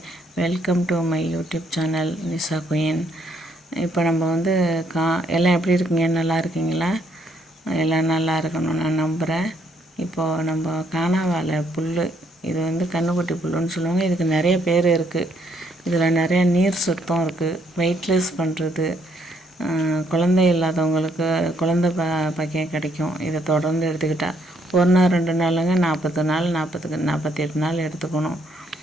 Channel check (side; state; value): both; normal; correlation 0.70